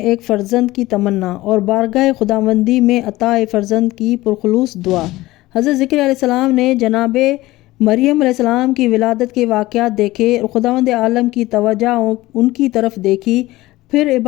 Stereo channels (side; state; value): right; quieter; 18.1 dB